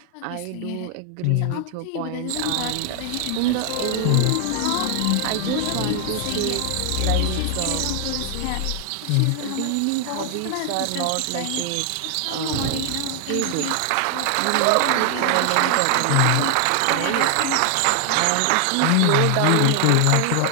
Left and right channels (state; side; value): different; both; correlation 0.00